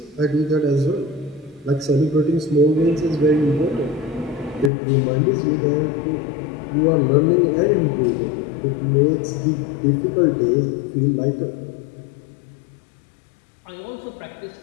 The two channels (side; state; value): right; drops out; at 4.7 s